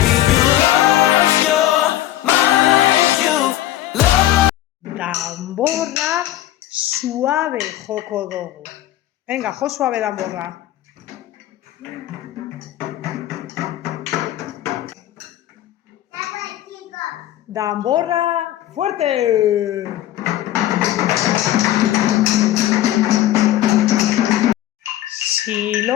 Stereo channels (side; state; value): right; quieter; 13.7 dB